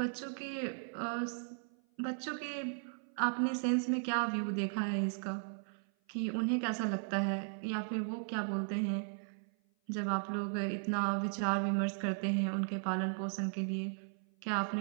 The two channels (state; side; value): silent; left; 53 dB below the other